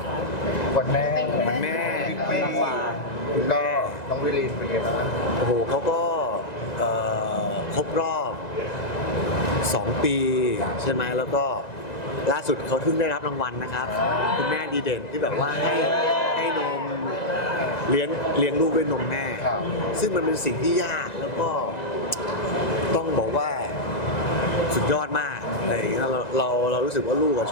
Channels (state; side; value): late; right; 1.9 ms